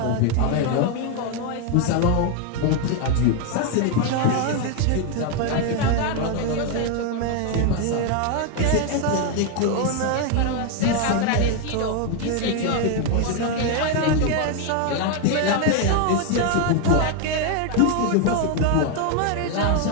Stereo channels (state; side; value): different; both; correlation 0.01